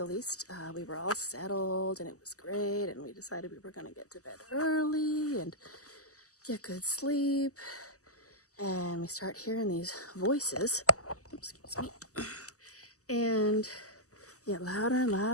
least. We were all settled and it was great, and we decided we were going to get to bed early and get good sleep. And we start hearing these voices, excuse me, and get louder and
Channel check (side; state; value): right; late; 0.66 ms